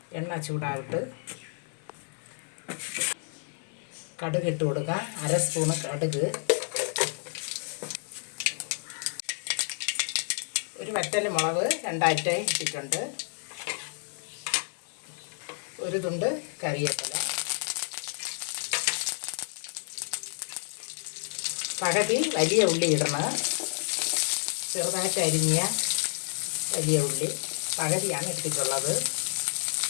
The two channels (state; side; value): silent; right; 56 dB below the other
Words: എണ്ണ ചൂടായിട്ട് കടുക് ഇട്ട് കൊടുക്കാം. 1/2 സ്പൂൺ കടുക്, ഒരു വറ്റൽ മുളക് 2 ഇട്ടിട്ടുണ്ട്, ഒരു തുണ്ട് കറിവേപ്പില, പകുതി വലിയ ഉള്ളി ഇടണം. ചെറുതായിട്ട് അരിഞ്ഞ വലിയ ഉള്ളി പകുതിയാണ് ഇട്ടിട്ടുള്ളത്.